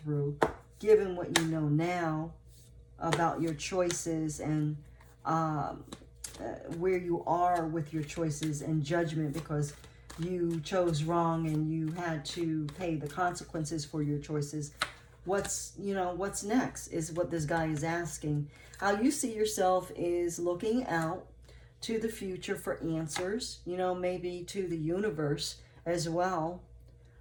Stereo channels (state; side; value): identical; both; correlation 1.00